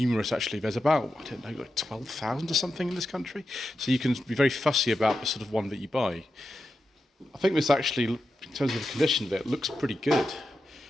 actually. There's about, I don't know, like 12,000 or something in this country. So you can be very fussy about the sort of one that you buy. I think this actually, in terms of the condition of it, looks pretty good.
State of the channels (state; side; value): normal; both; correlation 0.89